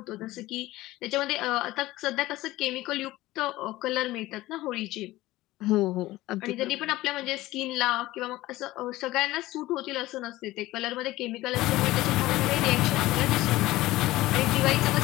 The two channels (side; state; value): right; quieter; 17.5 dB